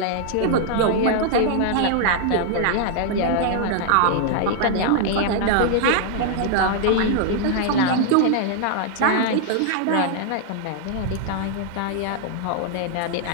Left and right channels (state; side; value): different; both; correlation -0.01